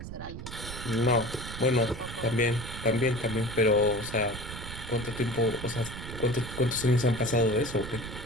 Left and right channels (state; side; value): noise; right; rumble, 9 dB below the sound